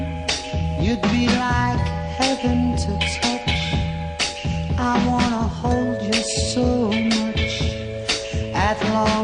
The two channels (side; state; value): both; identical; correlation 1.00